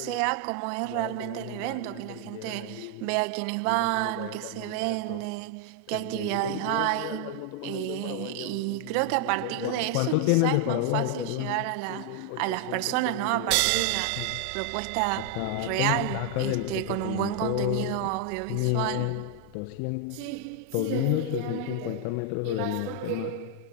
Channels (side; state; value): both; different; correlation 0.00